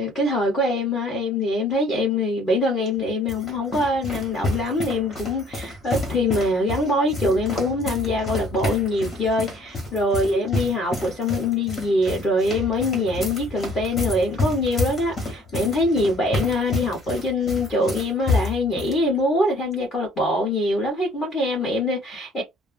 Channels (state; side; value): normal; both; correlation 0.56